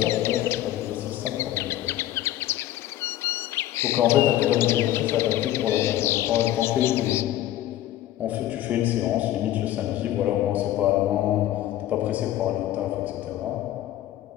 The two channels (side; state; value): right; quieter; 13.6 dB